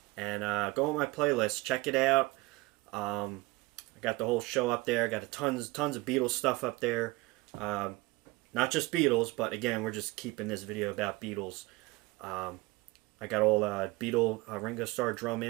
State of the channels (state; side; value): quieter; left; 22.1 dB